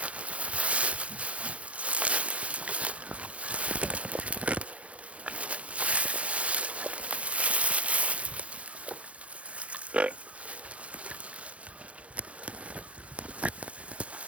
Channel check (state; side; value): late; left; 0.063 ms